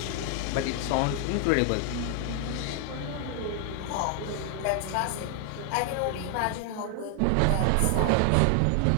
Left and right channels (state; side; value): different; both; correlation 0.00